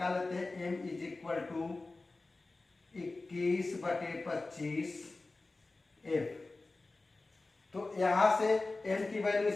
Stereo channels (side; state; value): right; quieter; 3.3 dB